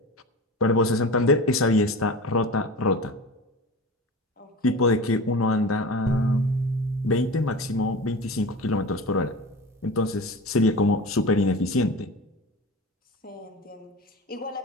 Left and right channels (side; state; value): both; normal; correlation 0.32